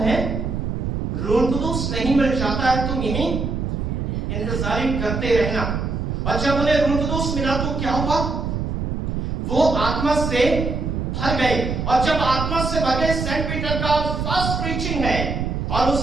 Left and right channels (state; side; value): noise; right; rumble, 2 dB below the sound